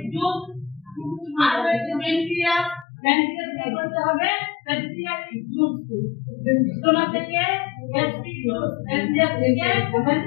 জুস। আর হচ্ছে প্যানক্রিয়াস, প্যানক্রিয়াস করতে হবে প্যানক্রিয়াটিক জুস। তোমাকে গ্যাস্ট্রিক জুস, প্যানক্রিয়াস থেকে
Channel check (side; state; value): right; drops out; at 2.9 s